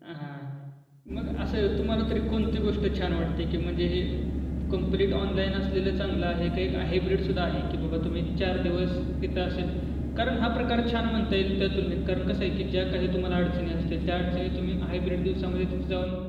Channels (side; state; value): both; identical; correlation 1.00